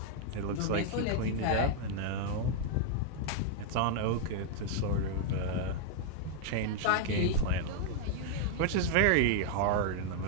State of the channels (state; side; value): different; both; correlation 0.00